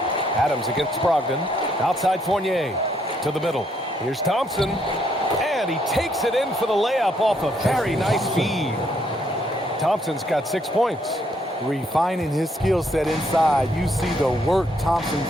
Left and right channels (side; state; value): both; normal; correlation 0.71